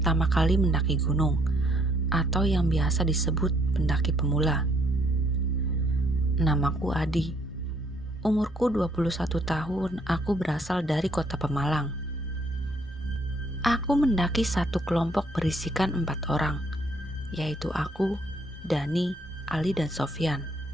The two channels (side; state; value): both; normal; correlation 0.67